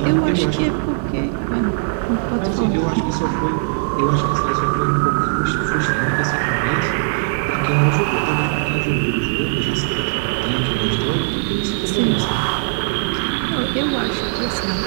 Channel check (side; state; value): left; silent; digital silence